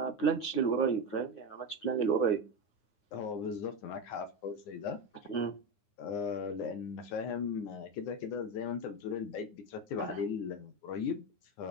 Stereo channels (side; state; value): right; late; 9.7 ms